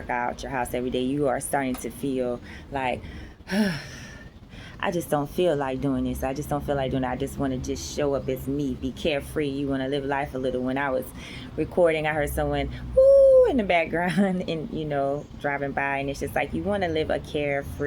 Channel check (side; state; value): both; identical; correlation 1.00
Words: out your house every day. You are starting to feel like I just don't feel like doing this. I just don't feel like doing it. I just want to just show up as me, be carefree. You want to live life a little. When I was recording, I heard someone woo in the background and, driving by. And it's just like you want to live a